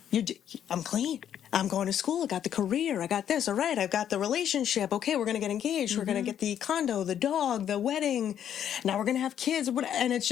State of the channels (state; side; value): quieter; right; 9.7 dB